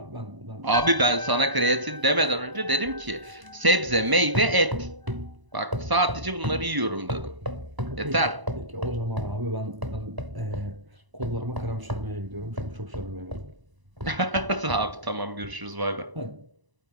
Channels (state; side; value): late; left; 1.0 ms